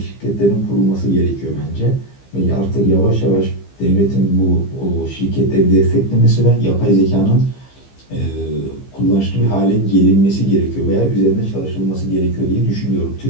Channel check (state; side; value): late; right; 15 ms